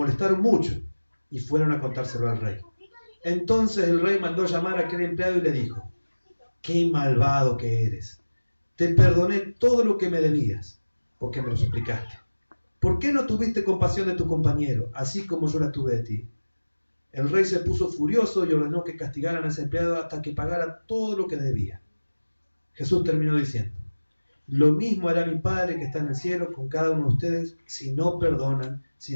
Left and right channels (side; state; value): both; inverted; correlation -1.00